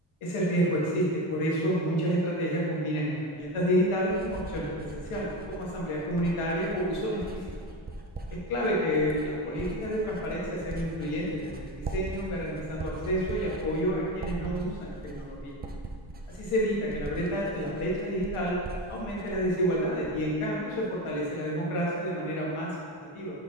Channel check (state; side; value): normal; both; correlation 0.21